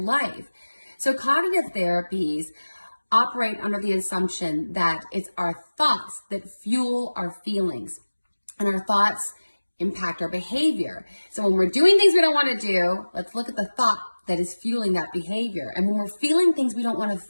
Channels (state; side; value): inverted; both; correlation -1.00